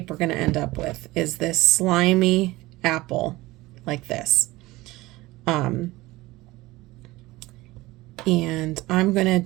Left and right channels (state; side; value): quieter; left; 19.5 dB